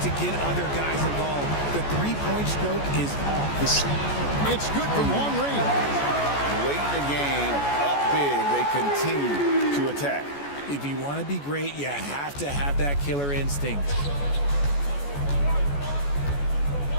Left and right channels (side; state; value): right; late; 14 ms